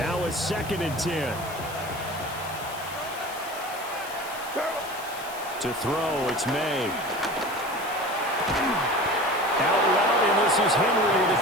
it's second and 10. To throw, it's May. Out route, and this is Henry with a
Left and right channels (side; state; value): left; noise; hiss, 15 dB below the sound